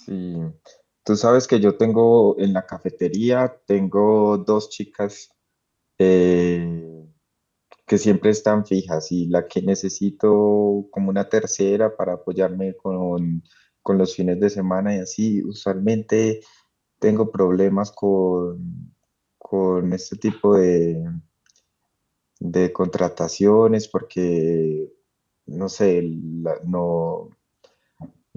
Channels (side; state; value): both; identical; correlation 1.00